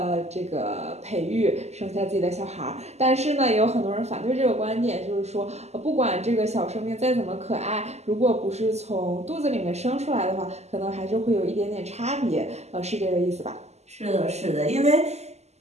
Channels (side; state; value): left; late; 0.32 ms